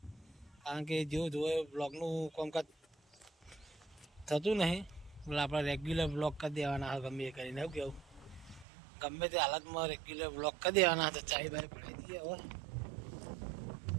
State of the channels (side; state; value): left; drops out; at 8.7 s